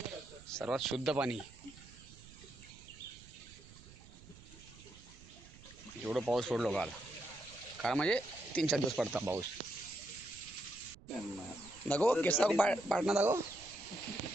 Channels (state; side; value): noise; right; rumble, 20 dB below the sound